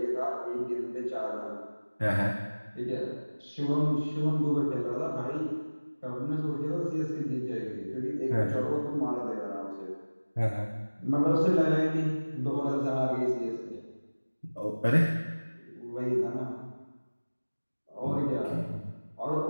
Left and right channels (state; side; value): inverted; both; correlation -1.00